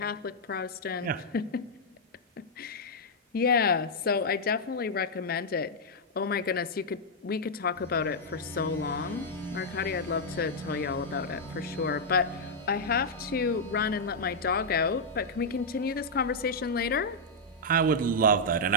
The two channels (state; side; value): normal; both; correlation -0.05